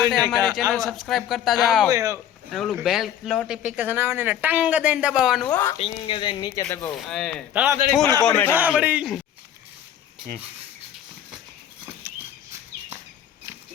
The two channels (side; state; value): right; quieter; 10.4 dB